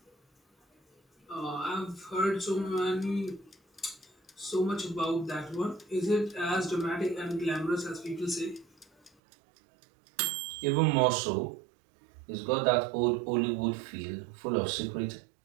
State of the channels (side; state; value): left; drops out; at 9.1 s